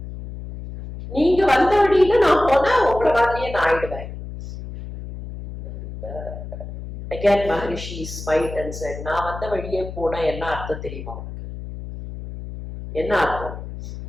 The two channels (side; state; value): left; noise; hum, 10 dB below the sound